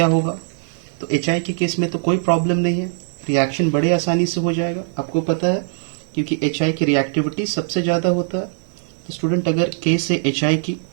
होगा? तो HI के केस में तो कोई प्रॉब्लम नहीं है, रिएक्शन बड़े आसानी से हो जाएगा, आपको पता है, क्योंकि HI की रिएक्टिविटी सबसे ज़्यादा होता है। तो स्टूडेंट अगर केस है HI की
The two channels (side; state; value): left; silent; digital silence